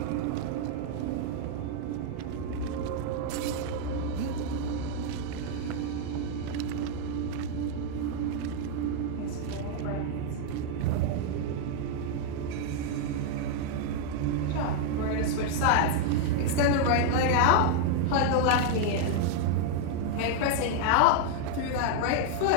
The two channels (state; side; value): different; both; correlation 0.00